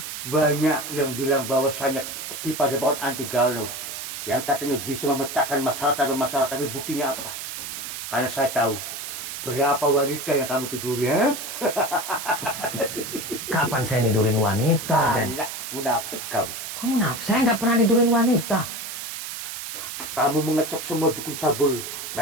yang bilang bahwasanya di Padepokan Anti Galuh yang katanya bisa memecahkan masalah, tapi buktinya apa? Karena saya tahu berapa wanita yang kamu tiduri, ya? Kapan saya nidurin wanita, Den? Alah, munafik kamu. Kok munafik? Saya nggak pernah nidurin wanita. Kamu mengecap semua dukun cabul.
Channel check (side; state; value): right; noise; hiss, 7 dB below the sound